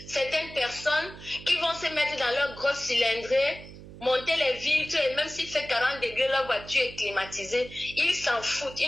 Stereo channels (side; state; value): right; noise; hum, 16 dB below the sound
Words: certaines personnes qui vont se mettre dans leur grosse cylindrée, monter les vitres, et même s'il fait 40 degrés, leur voiture est climatisée. Ils s'en foutent,